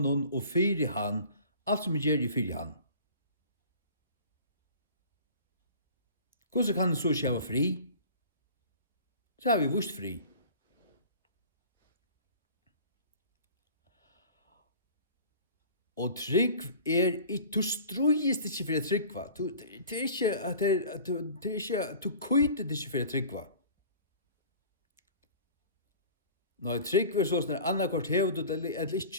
og fyri han, alt som jeg gjør i fyri han. Hvordan kan en så ikke være fri? Så har vi vust fri. Og trygg du strøyest ikke for å tryggva. Det er ikke, du køyter ikke for å tryggva. Når trygg er sånn, annakvart hever du det eller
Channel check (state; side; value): inverted; both; correlation -0.43